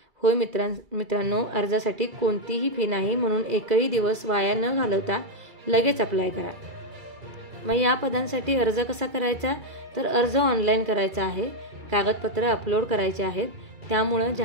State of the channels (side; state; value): left; late; 2.3 ms